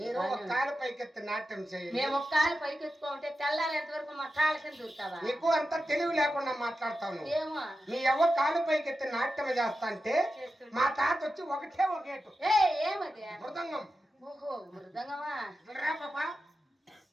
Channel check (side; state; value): both; normal; correlation 0.91